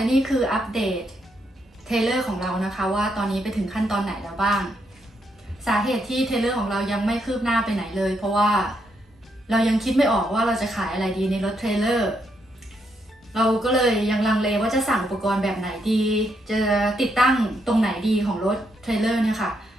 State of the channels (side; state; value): both; normal; correlation 0.78